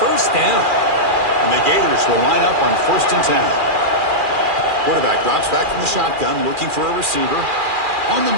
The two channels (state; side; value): late; left; 2.4 ms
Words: first down. And the Gators will line up on 1st and 10. Quarterback drops back from the shotgun, looking for a receiver. On the